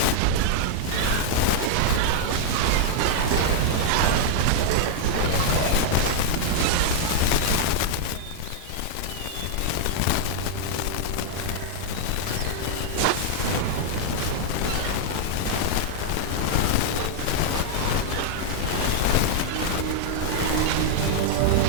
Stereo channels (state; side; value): different; both; correlation -0.01